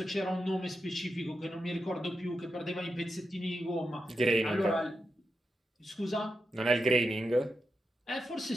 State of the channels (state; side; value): normal; both; correlation 0.87